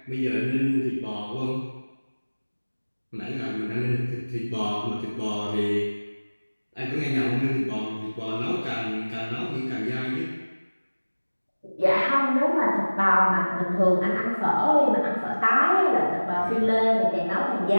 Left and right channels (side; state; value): both; inverted; correlation -1.00